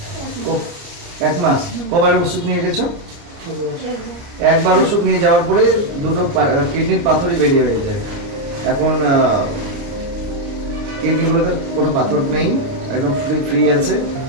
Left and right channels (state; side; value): late; left; 29 ms